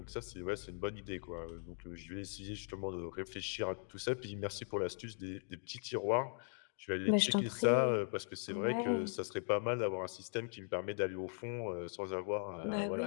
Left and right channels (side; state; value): right; silent; 51 dB below the other